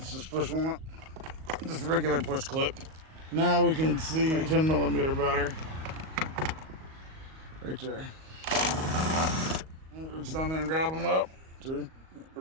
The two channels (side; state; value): left; late; 38 ms